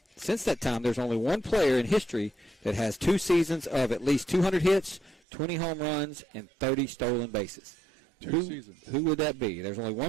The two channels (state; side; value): drops out; left; at 5.2 s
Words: Since that time, there's only one player in history that has 2 seasons of at least 200 hits, 20 home runs, and 30 stolen bases. Who would that be? There's only